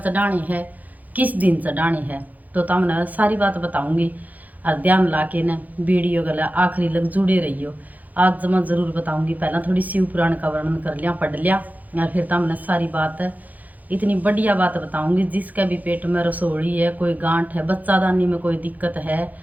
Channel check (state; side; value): late; left; 0.080 ms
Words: चढ़ाने है, किस दिन चढ़ाने है, तो तुमने सारी बात बताऊंगी। और ध्यान ला के न वीडियो गला आखिरी लग जुड़े रहियो। आज मैं ज़रूर बताऊंगी। पहला थोड़ी शिव पुराण का वर्णन कर लिया, पढ़ लिया, और फिर तुमने सारी बात इतनी बढ़िया बात बताऊंगी। जिसका भी पेट में रसोड़ी है, कोई गांठ है, बच्चादानी में कोई दिक्कत है,